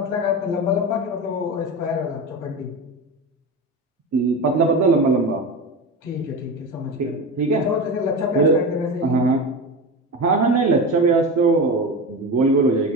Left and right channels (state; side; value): normal; both; correlation 0.24